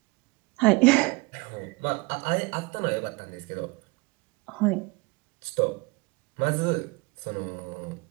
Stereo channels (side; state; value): left; quieter; 25.9 dB